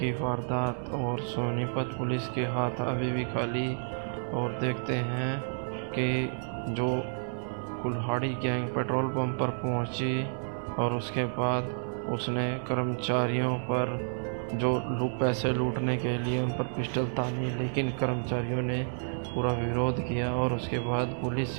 वारदात और सोनीपत पुलिस के हाथ अभी भी खाली, और देखते हैं कि जो कुल्हाड़ी गैंग पेट्रोल पंप पर पहुंची और उसके बाद उसने कर्मचारियों पर जो पैसे लूटने के लिए उन पर पिस्टल तानी, लेकिन कर्मचारियों ने पूरा विरोध किया और उसके बाद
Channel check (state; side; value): silent; left; digital silence